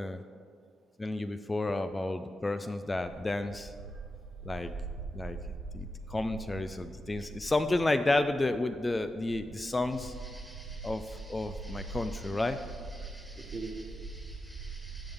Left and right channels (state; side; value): normal; both; correlation 0.91